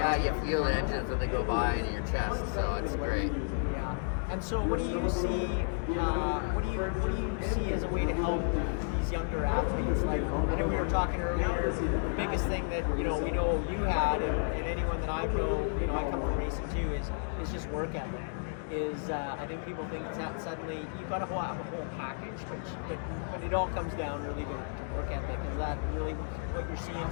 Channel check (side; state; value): right; silent; digital silence